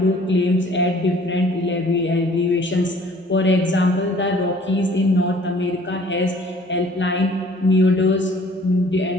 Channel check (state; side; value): normal; both; correlation 0.54